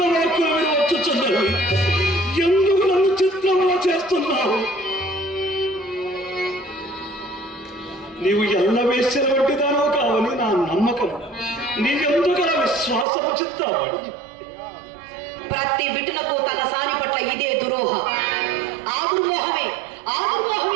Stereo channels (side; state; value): left; drops out; at 13.1 s